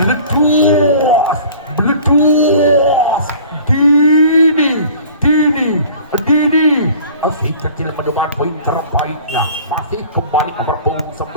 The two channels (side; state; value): both; inverted; correlation -0.46